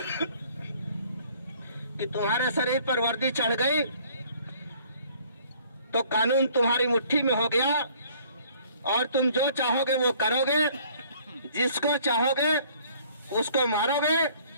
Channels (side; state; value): both; inverted; correlation -0.57